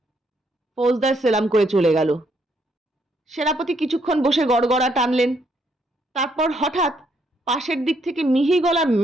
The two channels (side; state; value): both; normal; correlation 0.73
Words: ফৌজদার সেলাম করে চলে গেল। সেনাপতি কিছুক্ষণ বসে গড়গড়া টানলেন। তারপর হঠাৎ পাশের দিক থেকে মিহি গলার